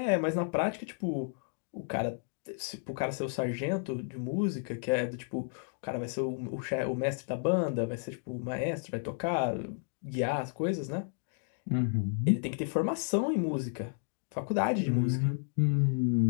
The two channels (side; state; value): right; silent; digital silence